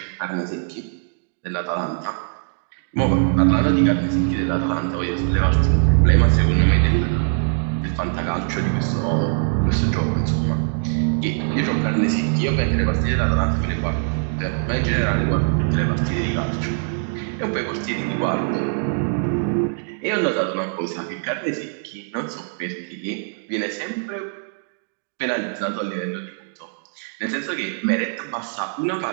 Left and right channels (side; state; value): left; silent; digital silence